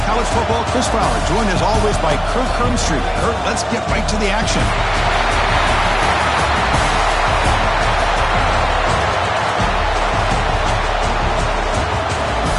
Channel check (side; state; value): both; identical; correlation 1.00